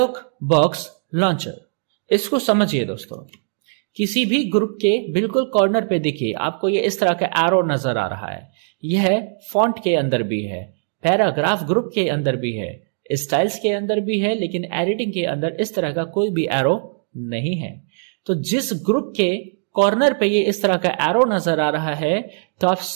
बॉक्स लॉन्चर, इसको समझिए दोस्तों। किसी भी ग्रुप के बिल्कुल कॉर्नर पे देखिए आपको ये इस तरह का एरो नजर आ रहा है। यह फॉन्ट के अंदर भी है, पैराग्राफ ग्रुप के अंदर भी है, स्टाइल्स के अंदर भी है, लेकिन एडिटिंग के अंदर इस तरह का कोई भी एरो नहीं है। तो जिस ग्रुप के कॉर्नर पे ये इस तरह का एरो नजर आ रहा है तो आप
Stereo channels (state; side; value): silent; left; digital silence